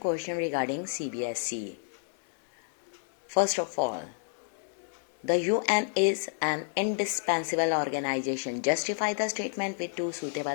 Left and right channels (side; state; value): right; silent; digital silence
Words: regarding CBSE. First of all, the UN is an indispensable organization. Justify the statement with two